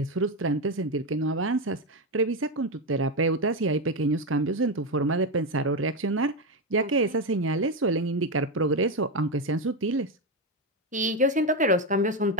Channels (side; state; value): both; normal; correlation 0.10